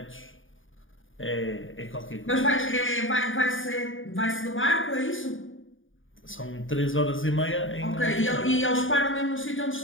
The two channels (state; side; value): late; right; 0.58 ms